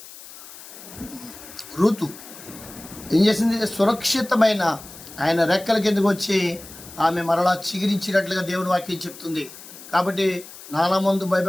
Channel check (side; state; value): left; noise; hiss, 16 dB below the sound